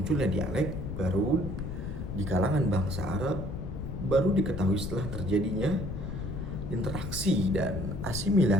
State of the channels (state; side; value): noise; left; rumble, 6 dB below the sound